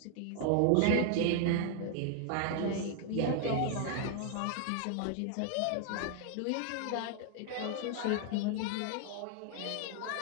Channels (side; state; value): both; different; correlation 0.00